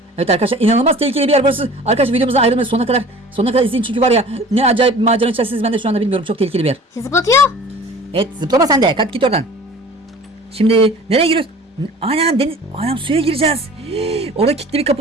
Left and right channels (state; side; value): normal; both; correlation 0.44